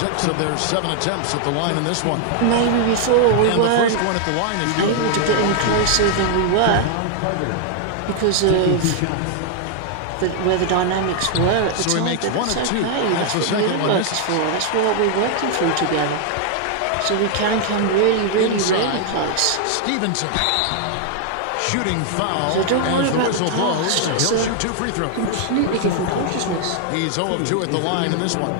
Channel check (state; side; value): different; both; correlation 0.00